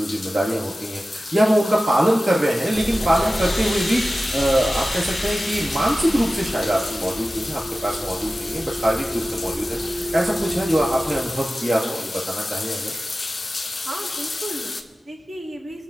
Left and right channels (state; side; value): normal; both; correlation 0.95